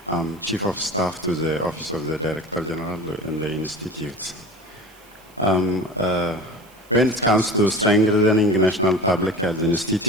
I'm Chief of Staff to the Office of the Director General in the Institute. When it comes to strengthening National Public Health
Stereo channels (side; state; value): right; noise; hiss, 28 dB below the sound